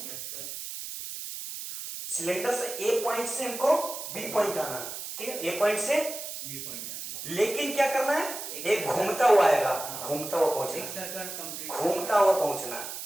सिलेंडर से ए पॉइंट से हमको बी पॉइंट आना है, ठीक है, ए पॉइंट से बी पॉइंट लेकिन क्या करना है, एक घूमता हुआ आएगा, घूमता हुआ एक पहुंचना, सर्कल कंप्लीट, घूमता हुआ पहुंचना,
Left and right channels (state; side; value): noise; right; hiss, 8 dB below the sound